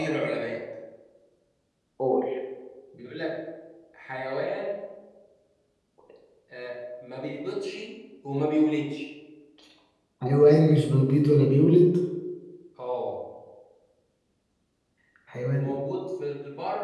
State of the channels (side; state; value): both; identical; correlation 1.00